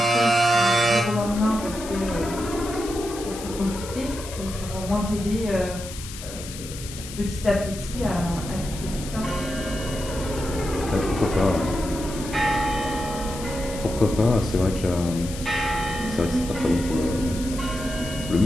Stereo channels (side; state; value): left; noise; hiss, 12 dB below the sound